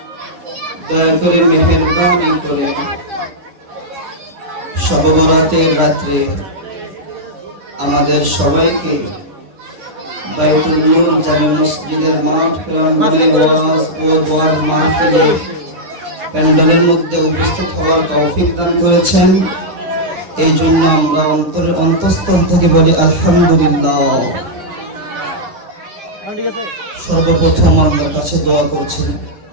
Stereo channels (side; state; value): left; late; 10 ms